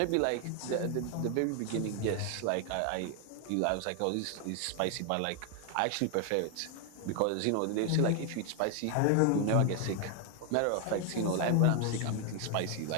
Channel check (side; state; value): both; different; correlation 0.01